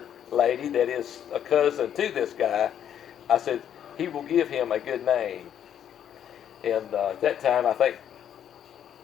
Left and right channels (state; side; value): quieter; right; 9.6 dB